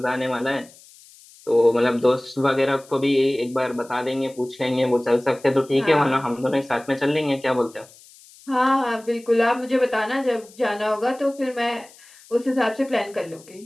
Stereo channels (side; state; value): left; noise; hiss, 24 dB below the sound